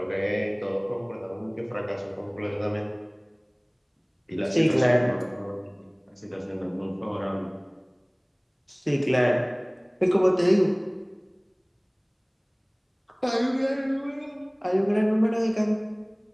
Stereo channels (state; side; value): identical; both; correlation 1.00